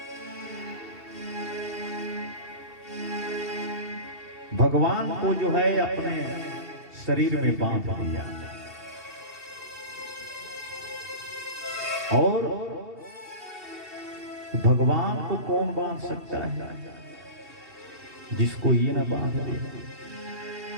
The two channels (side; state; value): left; late; 2.7 ms